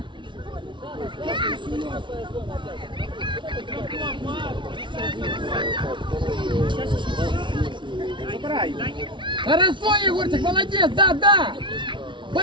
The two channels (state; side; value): late; left; 0.24 ms